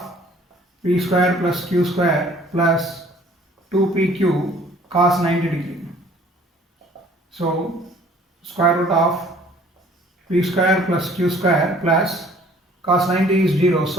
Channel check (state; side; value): normal; both; correlation 0.55